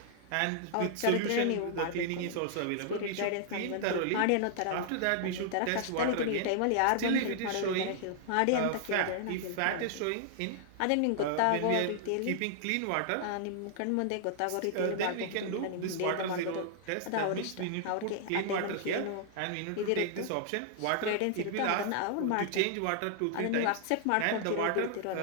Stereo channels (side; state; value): both; different; correlation -0.01